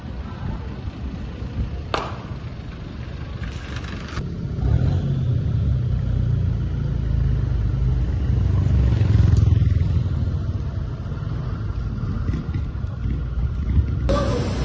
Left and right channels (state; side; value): identical; both; correlation 1.00